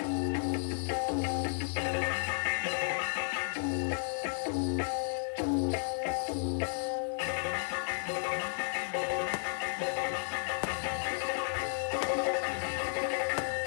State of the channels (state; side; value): silent; right; digital silence